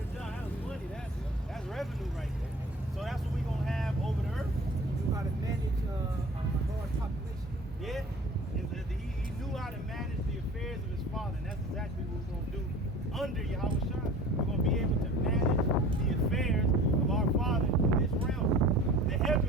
job. That was money. That's revenue right there. So that's what we're gonna have over the earth. He knew how to manage a large population. Yeah, he knew how to manage the affairs of his father, and that's exactly what we're going to do under Yahweh Shai. We're going to be able to manage the affairs of our Father in this realm. The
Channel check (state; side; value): normal; both; correlation 0.44